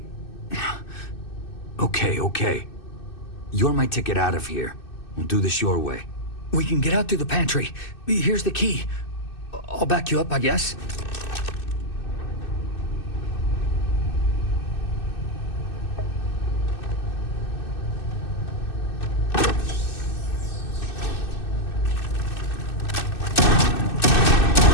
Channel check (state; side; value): late; right; 2.6 ms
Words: Okay. You're my ticket out of here. We'll do this your way. We can get out through the pantry. Here's the key. I'll back you up, I guess.